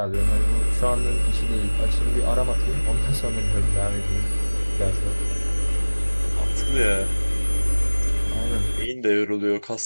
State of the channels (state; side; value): inverted; both; correlation -1.00